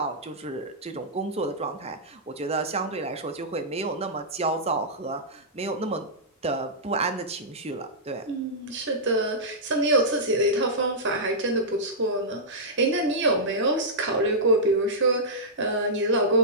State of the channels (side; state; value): both; normal; correlation -0.13